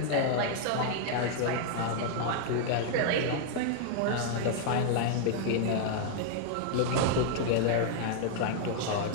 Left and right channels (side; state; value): both; different; correlation -0.01